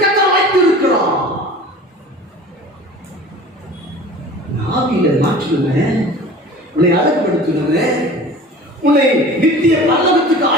கர்த்தர் வைத்திருக்கிறார்? ஆவியில மாற்றுவேன், உன்னை அழகுபடுத்துவேன், உன்னை நித்திய பரலோகத்துக்கு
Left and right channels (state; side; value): normal; both; correlation 0.41